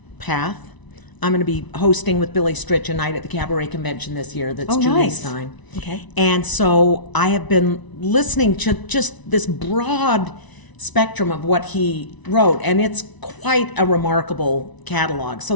path. I'm going to be hosting with Billy Stritch a night at the Cabaret Convention this year that's Oh, Julie nice. Stein. Okay. And so I have been listening to just this broad spectrum of what he wrote, and it's quite a remarkable catalog. So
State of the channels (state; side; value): late; right; 1.0 ms